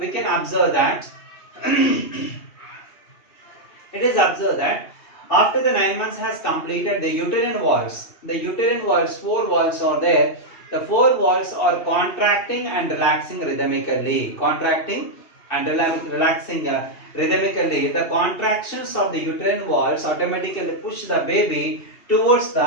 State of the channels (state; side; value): late; right; 2.8 ms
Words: can observe that it is observed that after the 9 months has completed, the uterine walls, 4 walls are there. The 4 walls are contracting and relaxing rhythmically. Contracting and relaxing rhythmically. The contractions of the uterine walls automatically push the baby towards